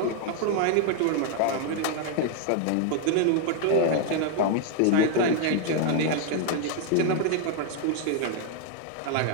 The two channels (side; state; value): both; different; correlation 0.00